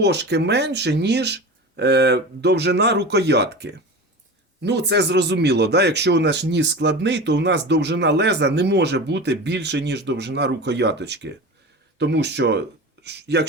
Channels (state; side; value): normal; both; correlation 0.30